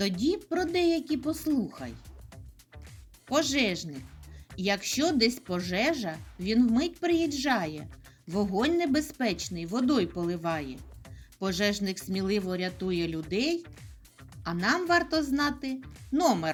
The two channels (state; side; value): identical; both; correlation 1.00